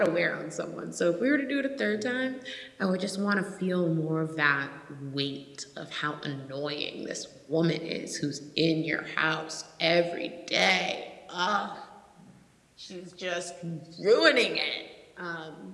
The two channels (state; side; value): identical; both; correlation 1.00